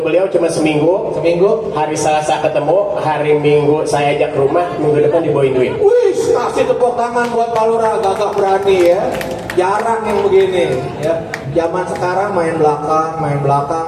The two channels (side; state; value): both; identical; correlation 1.00